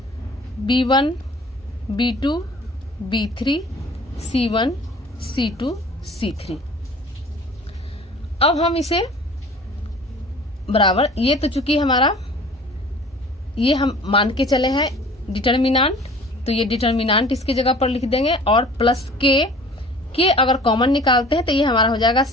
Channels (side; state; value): both; normal; correlation 0.47